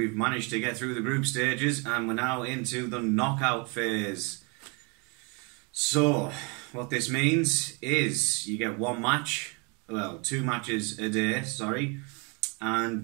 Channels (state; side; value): quieter; left; 32.2 dB